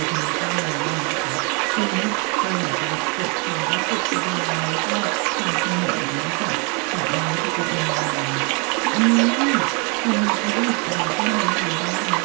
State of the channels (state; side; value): quieter; left; 32.9 dB